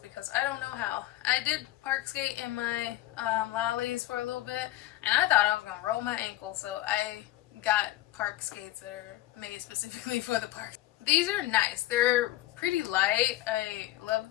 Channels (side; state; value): right; quieter; 16.0 dB